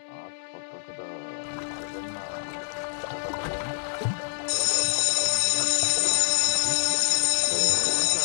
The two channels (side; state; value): right; silent; digital silence